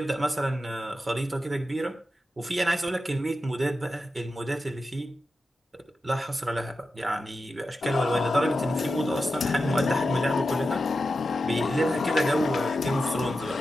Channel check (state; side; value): normal; both; correlation 0.91